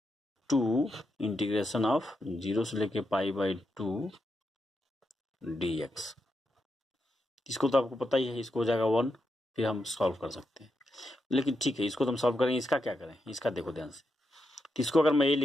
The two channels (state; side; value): normal; both; correlation 0.85